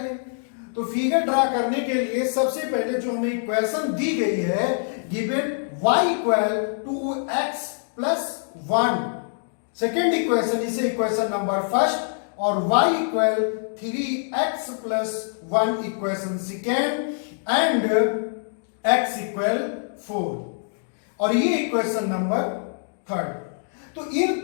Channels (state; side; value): silent; right; digital silence